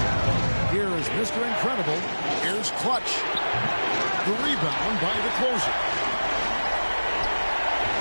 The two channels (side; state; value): both; inverted; correlation -1.00